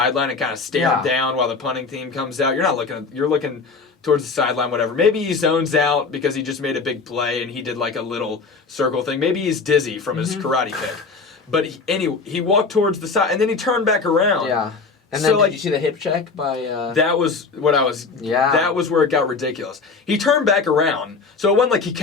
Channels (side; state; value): right; quieter; 4.5 dB